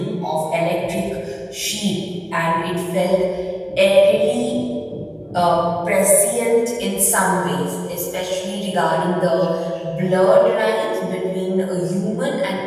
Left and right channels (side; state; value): both; identical; correlation 1.00